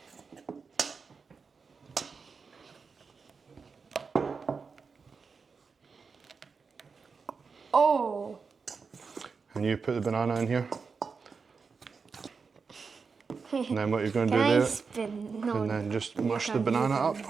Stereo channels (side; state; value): left; quieter; 5.1 dB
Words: Oh! And you put the banana in here. And then what you're going to Can do I there, spin? No, and then just mush the banana up.